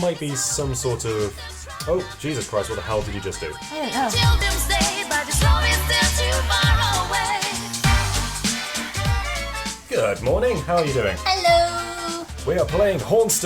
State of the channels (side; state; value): both; identical; correlation 1.00